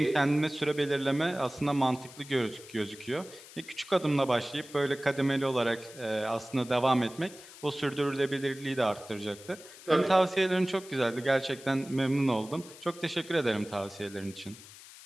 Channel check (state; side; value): noise; left; hiss, 18 dB below the sound